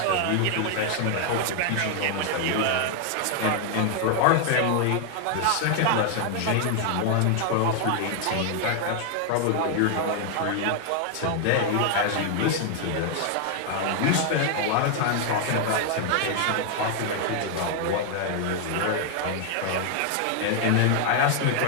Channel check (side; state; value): both; different; correlation 0.00